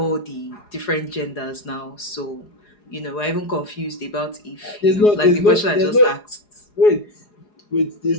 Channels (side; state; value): right; late; 4.8 ms